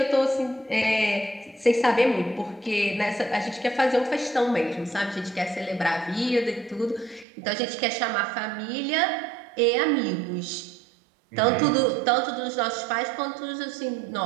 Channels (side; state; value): left; drops out; at 7.2 s